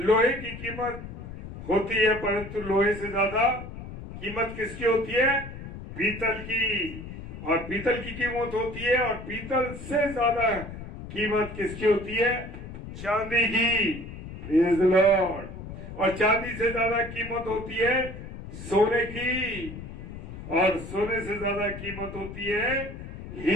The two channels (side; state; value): left; noise; rumble, 11 dB below the sound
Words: की कीमत होती है, परंतु लोहे से ज्यादा कीमत किसकी होती है? पीतल की। और पीतल की कीमत होती है, और पीतल से ज्यादा कीमत किसकी होती है? चांदी की। Praise the Lord. और चांदी से ज्यादा कीमत होती है सोने की, और सोने से ज्यादा कीमत होती है